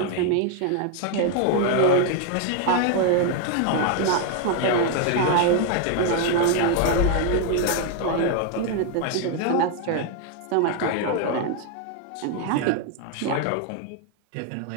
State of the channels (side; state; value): both; different; correlation 0.00